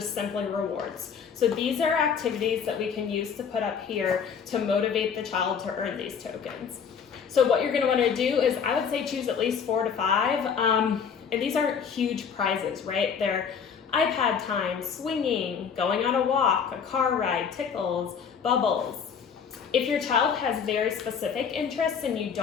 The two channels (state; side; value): quieter; right; 6.8 dB